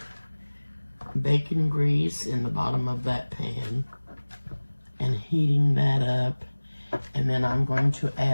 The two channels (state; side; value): inverted; both; correlation -1.00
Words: bacon grease in the bottom of that pan and heating that up. And then I'm going to